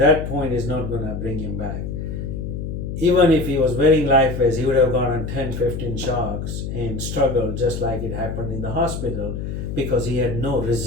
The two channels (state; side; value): noise; left; hum, 5 dB below the sound